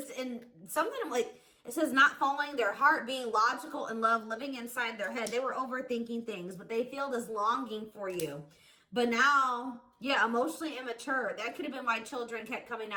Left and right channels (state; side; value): identical; both; correlation 1.00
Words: and something like, it says not following their heart, being logical in love, living inside their head. They were overthinking things, but they feel this longing for you. But now, yeah, emotionally immature. That could have been why children kept coming